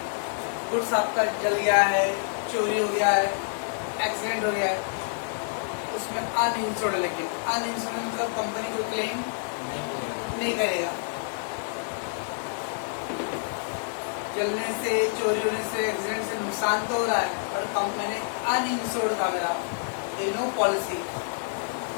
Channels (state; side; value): silent; right; 60 dB below the other